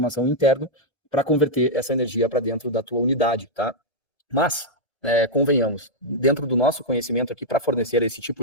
interno para converter essa energia para dentro da tua unidade. Tá? Mas, convenhamos, dentro do nosso conhecimento aqui, para fornecer esse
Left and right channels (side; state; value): right; late; 1.3 ms